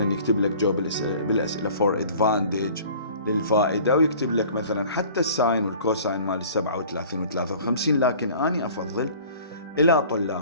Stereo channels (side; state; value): both; inverted; correlation -0.47